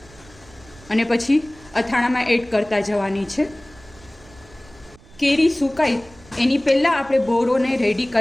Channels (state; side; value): noise; right; rumble, 24 dB below the sound